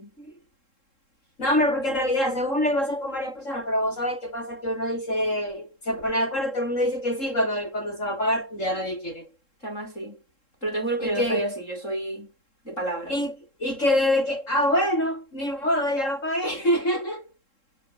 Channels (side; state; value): right; late; 3.7 ms